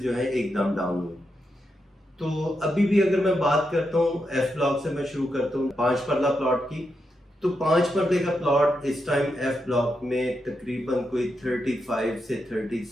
जो है एकदम डाउन हुए। तो अभी भी अगर मैं बात करता हूँ एफ ब्लॉक से मैं शुरू करता हूँ 5 परला प्लॉट की, तो 5 परदे का प्लॉट इस टाइम एफ ब्लॉक में तकरीबन कोई 35 से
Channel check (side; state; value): both; normal; correlation 0.85